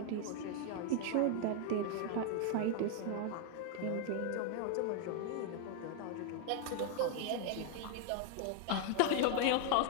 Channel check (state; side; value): different; both; correlation 0.00